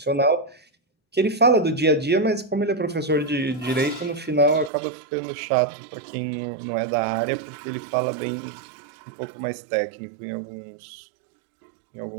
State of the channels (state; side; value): drops out; left; at 4.7 s